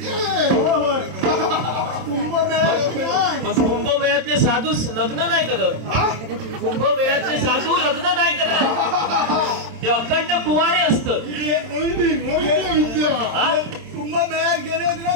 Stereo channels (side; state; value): left; late; 27 ms